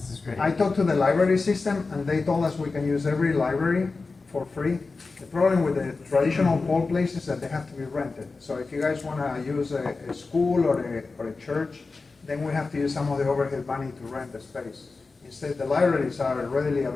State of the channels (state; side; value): quieter; right; 4.0 dB